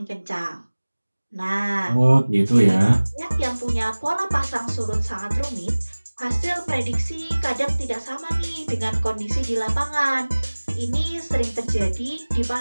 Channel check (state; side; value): inverted; both; correlation -1.00